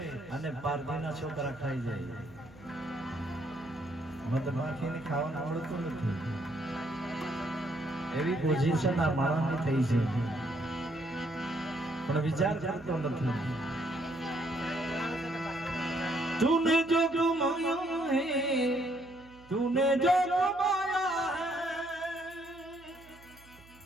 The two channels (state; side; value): noise; right; hum, 24 dB below the sound